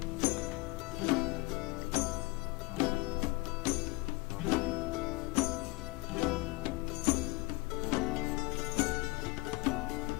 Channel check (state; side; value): quieter; right; 24.1 dB